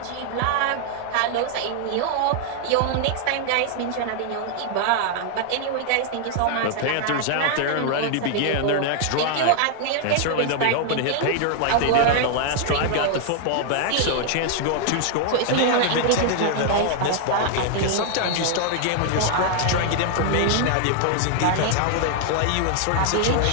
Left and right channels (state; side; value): different; both; correlation 0.00